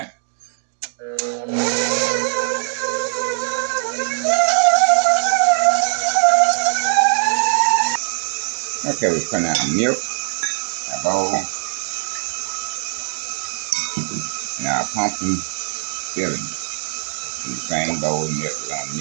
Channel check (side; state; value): left; silent; 57 dB below the other